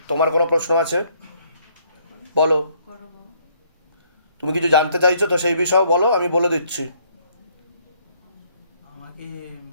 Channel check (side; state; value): both; inverted; correlation -0.66